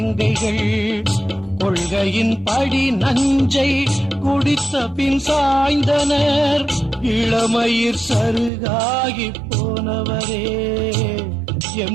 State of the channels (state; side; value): drops out; left; at 8.5 s